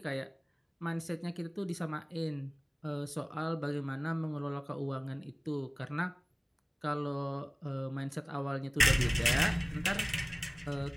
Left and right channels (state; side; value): identical; both; correlation 1.00